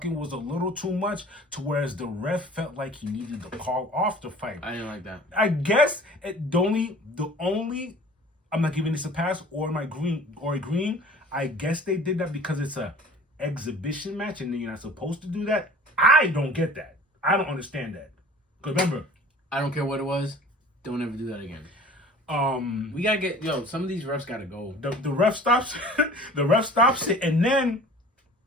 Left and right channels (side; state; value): both; normal; correlation 0.45